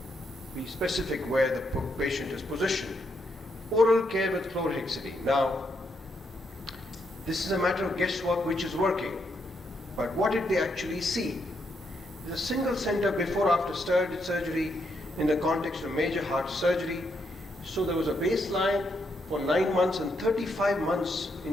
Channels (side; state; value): both; normal; correlation 0.78